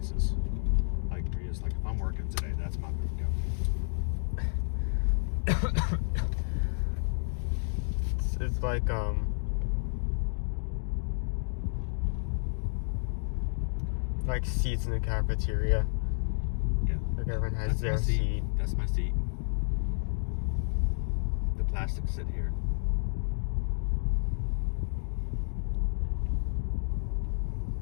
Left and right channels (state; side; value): silent; right; digital silence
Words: Like Maria's like, if I'm working today, that's my booth down here. It's like seats in the cafeteria. Yeah. Like everyone has That's their my seat. That's my seat. The plastic sit here.